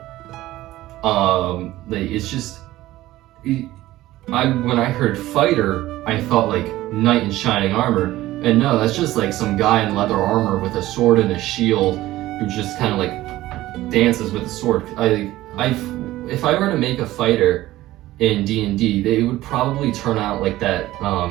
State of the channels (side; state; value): left; quieter; 16.1 dB